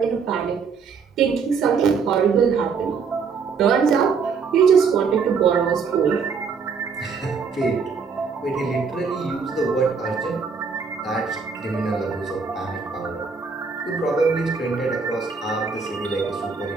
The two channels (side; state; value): left; quieter; 5.5 dB